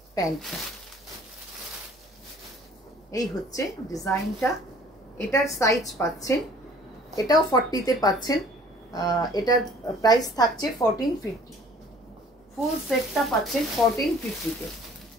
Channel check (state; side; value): normal; both; correlation 0.53